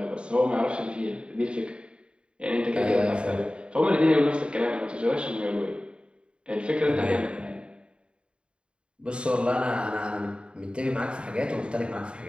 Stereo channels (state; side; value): late; left; 0.054 ms